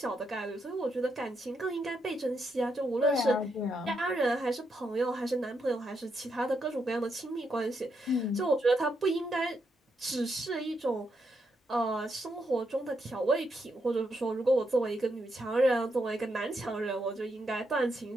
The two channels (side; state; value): both; normal; correlation 0.80